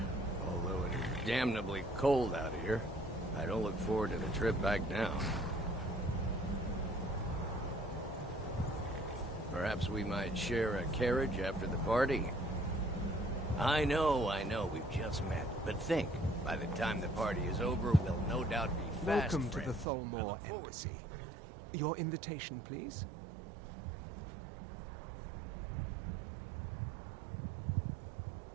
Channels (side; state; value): left; drops out; at 19.9 s